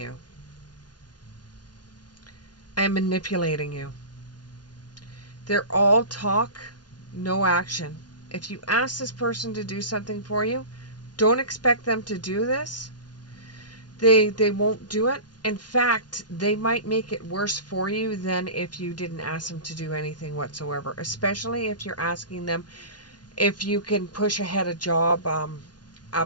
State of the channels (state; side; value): late; right; 0.70 ms